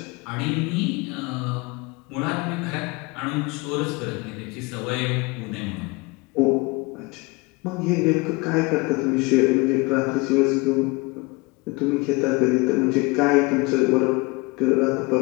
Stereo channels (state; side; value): quieter; right; 25.7 dB